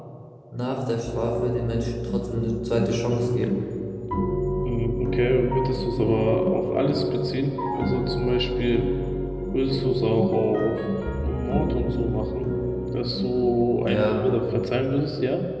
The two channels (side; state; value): both; identical; correlation 1.00